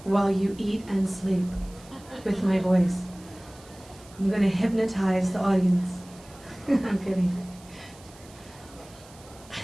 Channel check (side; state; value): right; noise; hiss, 23 dB below the sound